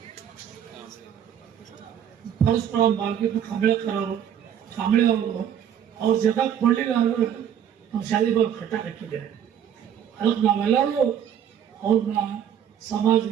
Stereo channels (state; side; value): quieter; left; 9.3 dB